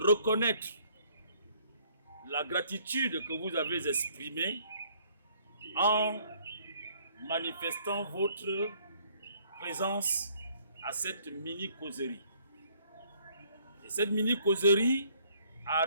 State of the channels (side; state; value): both; inverted; correlation -0.63